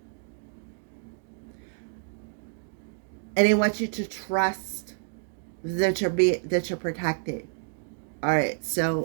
And they want you to trust that you're protected. All right,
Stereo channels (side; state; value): left; silent; digital silence